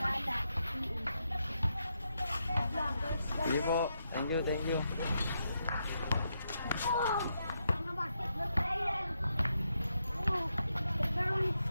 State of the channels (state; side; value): inverted; both; correlation -0.82